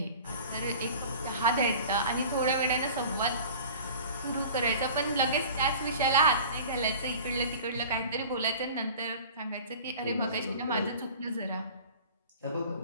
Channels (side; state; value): both; inverted; correlation -0.42